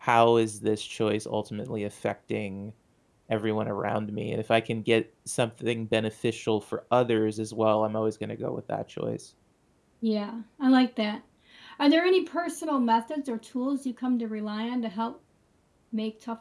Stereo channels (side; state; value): both; identical; correlation 1.00